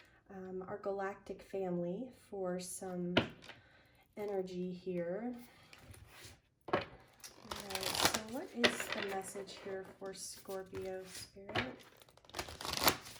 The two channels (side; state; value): both; identical; correlation 1.00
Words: our galactic family for some energy here. What is the message here for Scorpio Spirit?